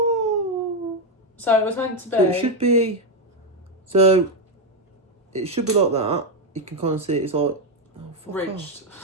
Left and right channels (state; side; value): normal; both; correlation 0.05